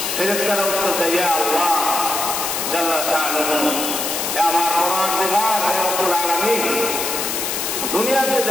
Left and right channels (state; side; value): noise; left; hiss, 2 dB below the sound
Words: ফেরেশতারা উত্তর দেয়, ইয়া আল্লাহ জাল্লা শাআনুহু, হে আমার পরওয়ারদিগার, হে রব্বুল আলামিন, দুনিয়াতে